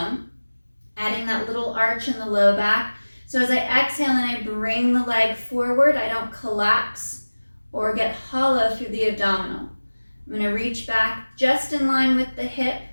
adding that little arch in the low back. So as I exhale and I bring the leg forward, I don't collapse or get hollow through the abdominal. I'm going to reach back just in line with the hip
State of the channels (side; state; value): both; inverted; correlation -1.00